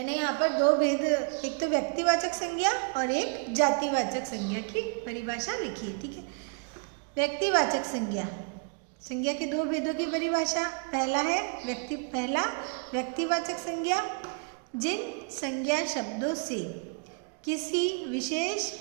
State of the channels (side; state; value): left; quieter; 34.6 dB